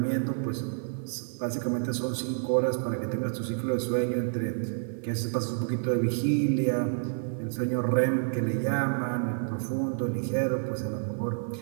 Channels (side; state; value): left; silent; 56 dB below the other